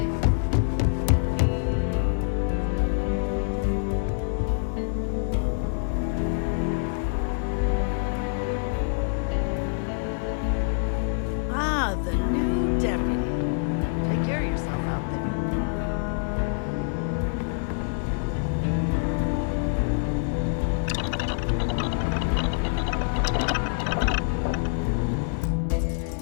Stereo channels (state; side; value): silent; right; 61 dB below the other